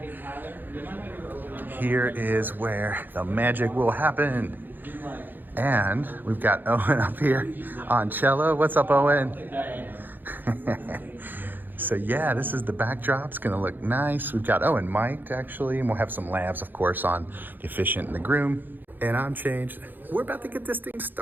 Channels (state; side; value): late; left; 0.090 ms